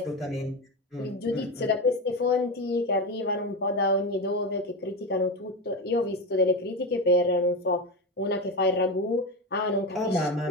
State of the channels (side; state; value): both; normal; correlation 0.18